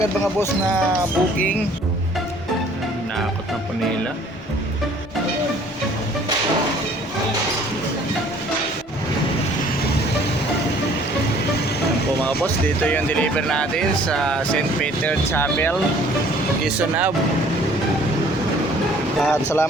mga boss na booking. Nakakot na po nila. Yan po mga boss, dito yung deliver natin sa St. Peter Chapel, Quezon Ave. At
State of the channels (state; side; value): normal; both; correlation 0.56